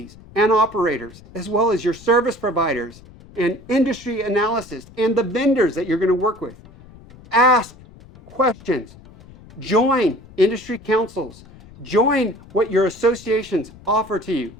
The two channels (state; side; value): noise; left; rumble, 21 dB below the sound